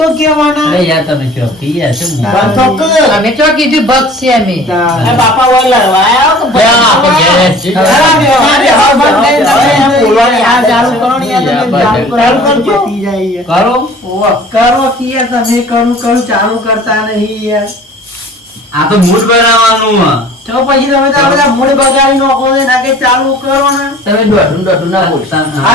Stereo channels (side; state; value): both; normal; correlation 0.47